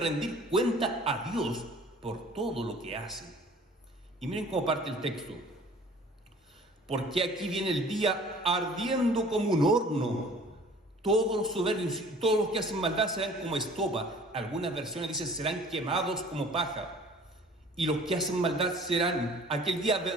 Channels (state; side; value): normal; both; correlation 0.49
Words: cuenta a Dios por todo lo que hacen. Y miren cómo parte el texto. Porque aquí viene el día ardiendo como un horno. Todos los soberbios y todos los que hacen maldad serán como estopa. Algunas versiones dicen serán quemados como paja. y los que hacen maldad serán. Aquel día